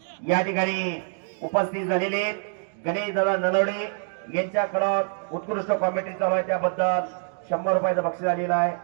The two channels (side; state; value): left; silent; digital silence